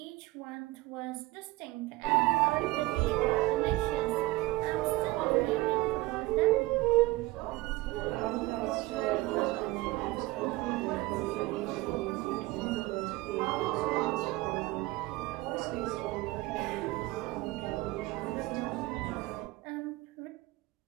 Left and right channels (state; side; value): quieter; left; 19.8 dB